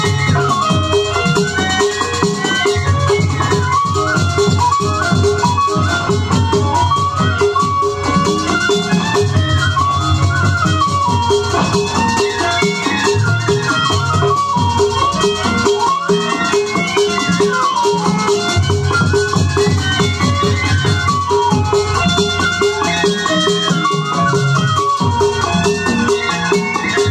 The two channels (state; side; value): identical; both; correlation 1.00